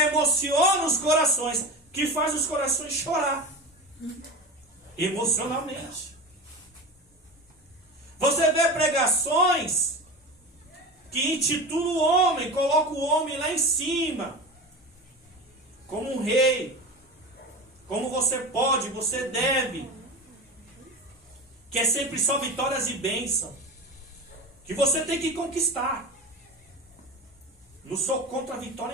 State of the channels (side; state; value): both; normal; correlation 0.28